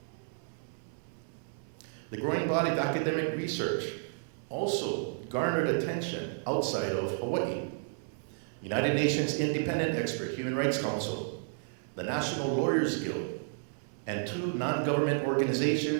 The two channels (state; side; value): silent; left; 56 dB below the other